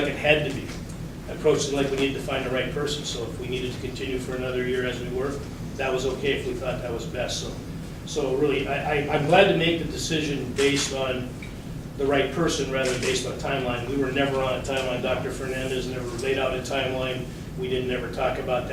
it had to be. I approached it like we needed to find the right person, so if we needed to continue for another year as we were, that was okay if we thought that was best. So really, I'm glad to make the decision based on the right person rather than based on timeline. We were never on a timeline. Dr. Fernandez never laid out a timeline. We didn't ever talk about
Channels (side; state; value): both; identical; correlation 1.00